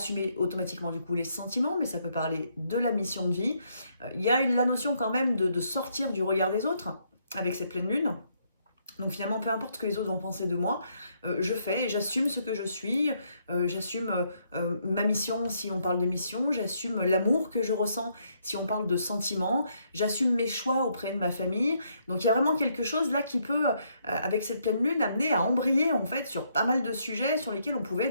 automatiquement du coup les sentiments, mais ça peut parler de la mission de vie. Il y a la notion quand même de sortir du regard des autres avec cette pleine lune. Donc finalement, peu importe ce que les autres vont penser de moi, je fais, j'assume ce que je suis, j'assume ma mission si on parle de mission, j'assume l'amour que je ressens si on parle de sentiments, j'assume mes choix auprès de ma famille. Donc il y a vraiment quelque chose là qui peut, avec cette pleine lune, amener à embrayer en fait sur pas mal de sujets sur lesquels on pouvait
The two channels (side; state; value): both; inverted; correlation -0.73